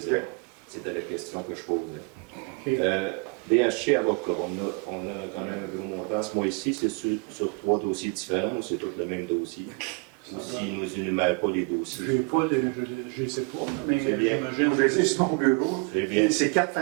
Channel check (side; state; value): left; quieter; 32.1 dB